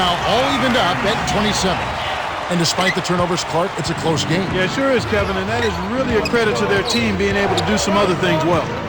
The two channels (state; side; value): identical; both; correlation 1.00